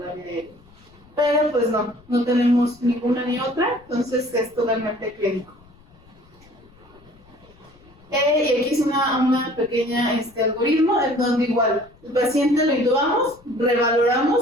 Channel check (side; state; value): left; noise; rumble, 27 dB below the sound